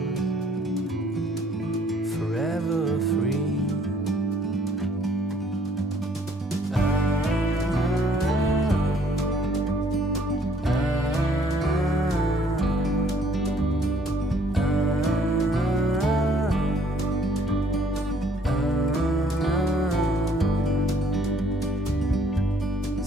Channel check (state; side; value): normal; both; correlation 0.62